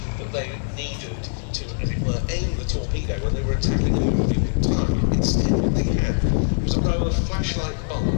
that they needed to, as it were, aim the torpedo when they were attacking a moving target. Instead, what they had was a row of flashlight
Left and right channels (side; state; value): right; silent; digital silence